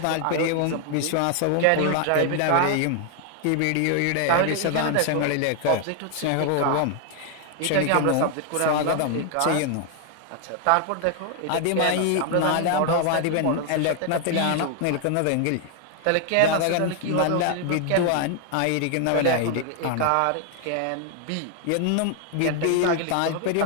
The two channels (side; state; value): both; different; correlation 0.00